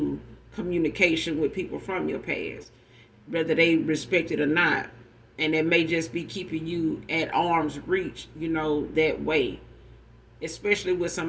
communication with people from your past, whether they respect it or not. And it may just be keeping you at arm's reach, that way. Especially with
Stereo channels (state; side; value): identical; both; correlation 1.00